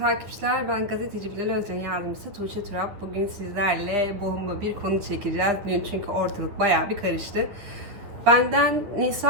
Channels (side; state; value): left; late; 10 ms